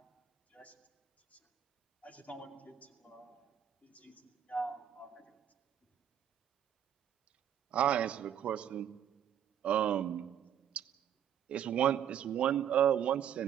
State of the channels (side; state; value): left; quieter; 9.6 dB